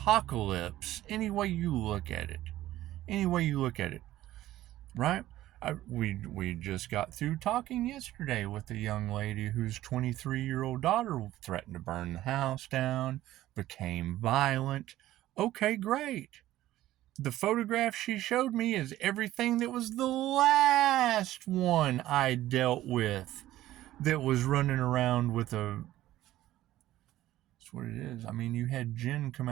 any way you look at it. Any way you look at it. Right? We just got through talking yesterday with a young lady whose 23-year-old daughter threatened to burn the house down, became violent. Okay, great. The photograph she showed me is everything that was the last one I dealt with that was running around with a... That's what it is. I mean, you had Jinn come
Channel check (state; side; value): quieter; left; 14.7 dB